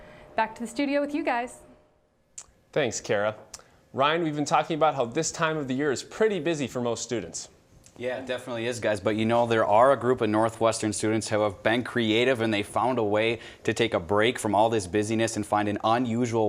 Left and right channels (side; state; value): both; identical; correlation 1.00